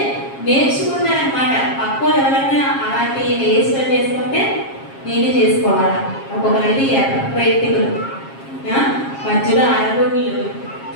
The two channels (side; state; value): right; late; 7.4 ms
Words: నేర్చుకున్నారనమాట. పక్కన ఎవరైనా అలాంటి హెయిర్ స్టైల్ చేసుకుంటే నేనే చేసుకోవాలా. ఒక్కొక్కరైతే ఎర్రటికలు, మధ్యలో అరగుళ్ళు,